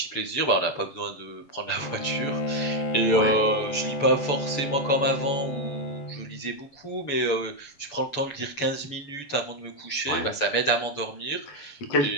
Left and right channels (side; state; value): right; late; 7.0 ms